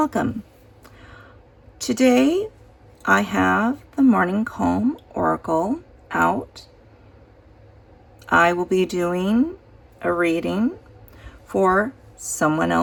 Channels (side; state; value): both; identical; correlation 1.00